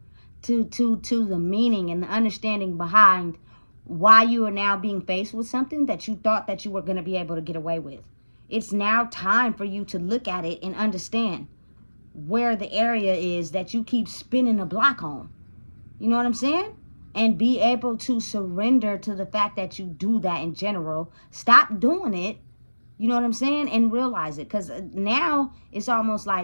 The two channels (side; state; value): both; inverted; correlation -1.00